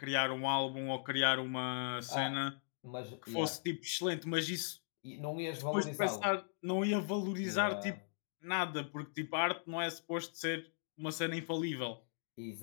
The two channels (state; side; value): silent; right; digital silence